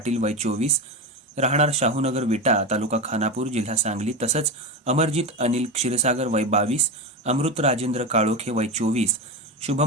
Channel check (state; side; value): normal; both; correlation 0.18